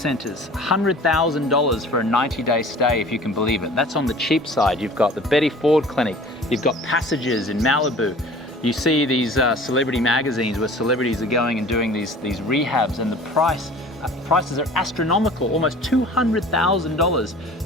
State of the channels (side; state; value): both; normal; correlation 0.45